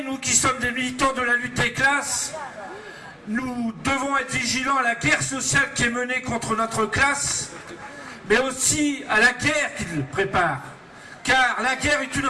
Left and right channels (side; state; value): both; identical; correlation 1.00